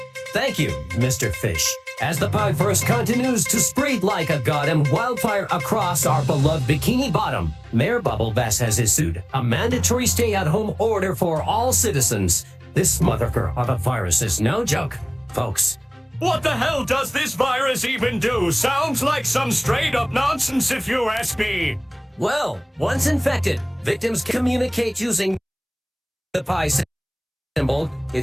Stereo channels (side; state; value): both; identical; correlation 1.00